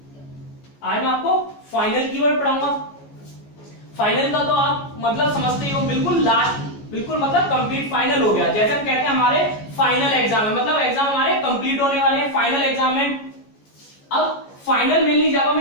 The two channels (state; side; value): late; right; 14 ms